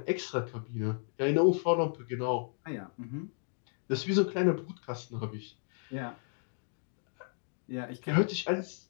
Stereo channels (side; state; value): right; silent; 55 dB below the other